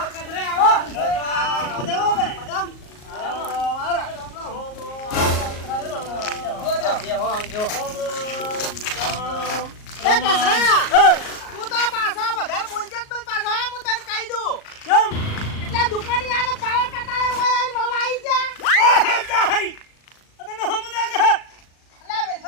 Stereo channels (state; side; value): late; right; 38 ms